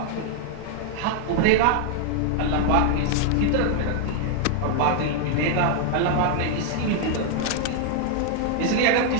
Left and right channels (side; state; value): both; different; correlation 0.00